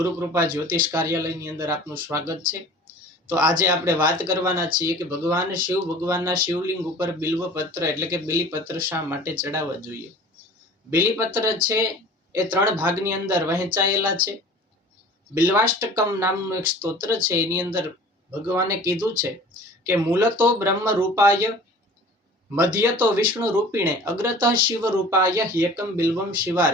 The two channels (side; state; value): both; normal; correlation 0.44